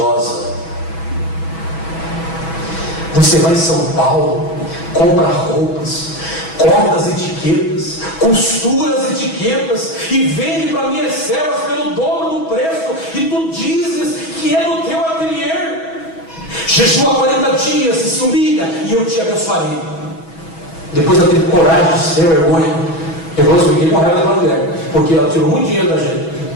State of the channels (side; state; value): right; late; 6.1 ms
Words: Você vai em São Paulo, compra roupas, corta as etiquetas, costura as etiquetas e vende para minhas servas pelo dobro do preço, e tu dizes que é no teu ateliê. Jejua 40 dias e se humilha e eu te abençoarei. Depois ela teve coragem de ser vergonha. Eu fiquei com raiva da mulher, porque ela tirou muito dinheiro da gente.